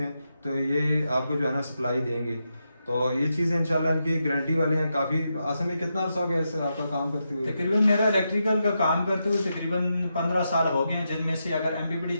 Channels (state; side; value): inverted; both; correlation -0.85